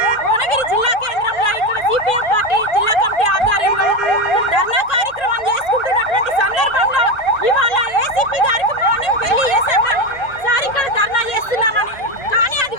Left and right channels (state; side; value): late; right; 1.8 ms